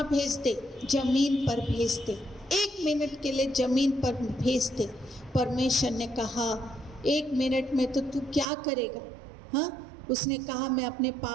भेज दे? ज़मीन पर भेज दे। 1 मिनट के लिए ज़मीन पर भेज दे। परमेश्वर ने कहा, 1 मिनट में तो तू क्या करेगा? हाँ, उसने कहा, मैं अपने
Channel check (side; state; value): left; drops out; at 8.5 s